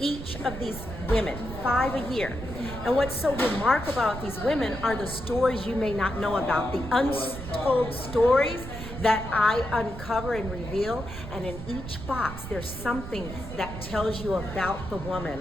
of these women, 5 a year. And what's so remarkable about these women are the stories you may not know about, the untold stories that I uncover and reveal. And in each box, there's something that tells you about the woman.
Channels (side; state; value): right; noise; rumble, 10 dB below the sound